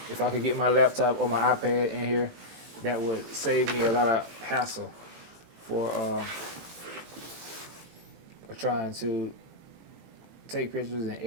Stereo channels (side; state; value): left; late; 18 ms